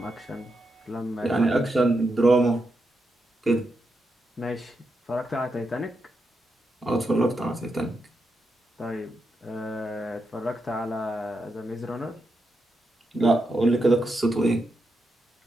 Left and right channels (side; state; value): both; normal; correlation 0.84